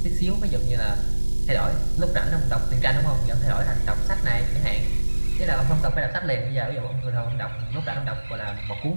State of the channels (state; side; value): inverted; both; correlation -1.00